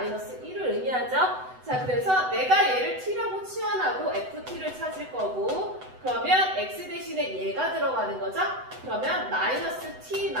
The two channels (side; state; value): left; late; 7.9 ms